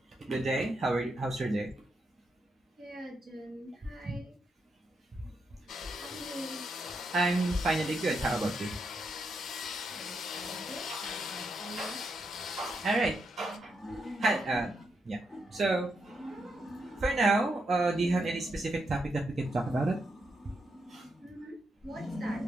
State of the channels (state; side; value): normal; both; correlation 0.81